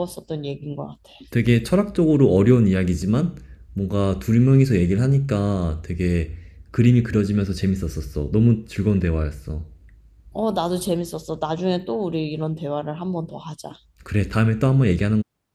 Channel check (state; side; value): identical; both; correlation 1.00